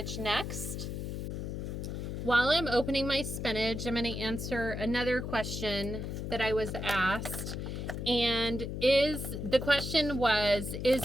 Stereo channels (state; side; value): noise; left; hum, 5 dB below the sound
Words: next. While I'm opening my spinach, I'm going to answer another question that I was asked. And the question was, is